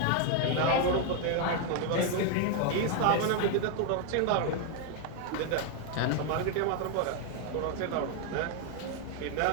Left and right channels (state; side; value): different; both; correlation 0.01